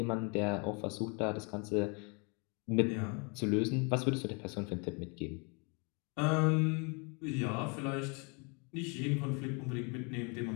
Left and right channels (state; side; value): quieter; right; 33.6 dB